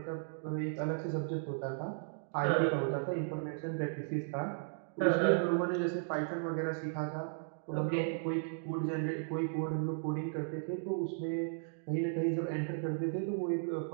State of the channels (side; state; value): left; silent; digital silence